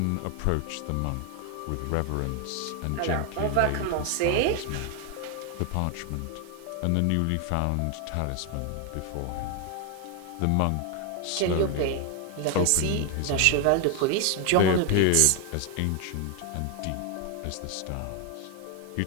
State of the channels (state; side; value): different; both; correlation 0.01